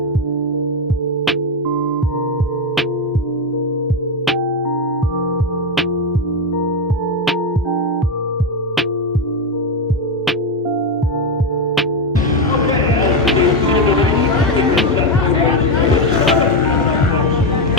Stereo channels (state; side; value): normal; both; correlation 0.09